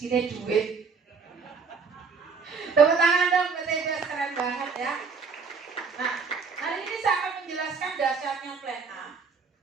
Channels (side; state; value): left; quieter; 5.2 dB